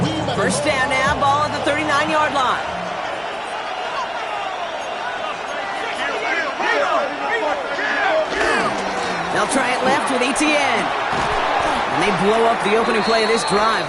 1st down now, ball at the 39-yard line. They'll try it left with ETN. And they blow up the opening play of this drive.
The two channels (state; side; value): identical; both; correlation 1.00